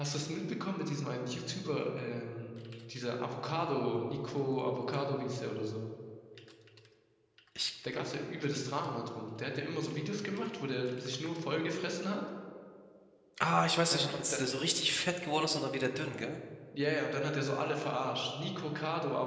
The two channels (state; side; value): identical; both; correlation 1.00